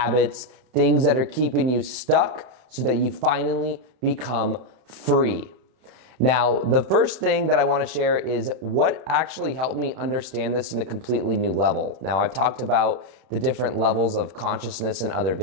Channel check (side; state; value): left; late; 31 ms